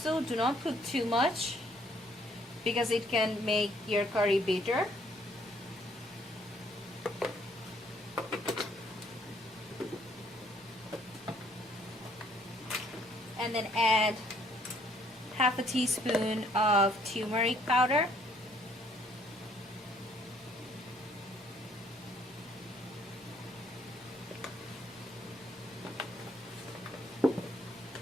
do not put too much because it can make your curry bitter. And then add half a teaspoon of turmeric powder.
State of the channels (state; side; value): normal; both; correlation 0.65